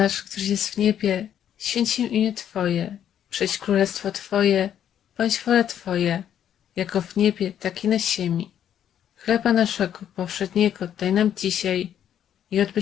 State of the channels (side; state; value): right; quieter; 9.9 dB